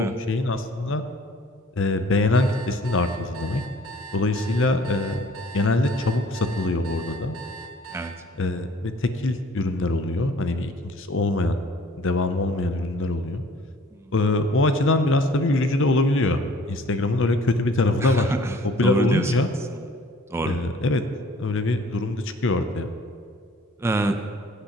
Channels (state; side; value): normal; both; correlation 0.54